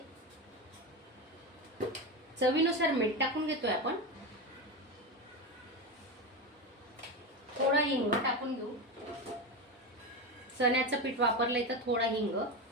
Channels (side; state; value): both; normal; correlation 0.17